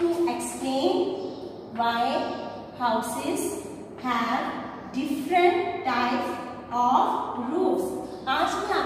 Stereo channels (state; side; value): identical; both; correlation 1.00